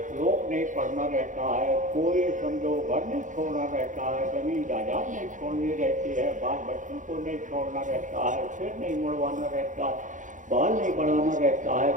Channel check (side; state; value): left; late; 0.37 ms